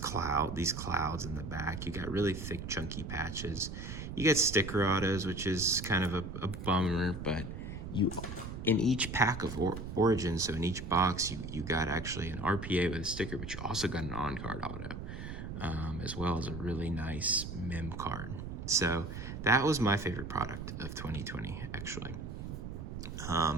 in the back. You got really thick, chunky patches. You get sticker autos, which is kind of a bummer, but in each pack of Origins, so in each box, you got actually an RPA with a sticker, but you also got an on-card auto, as well as a really nice mem card. So that was my favorite product of 2020, actually.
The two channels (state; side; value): noise; right; rumble, 7 dB below the sound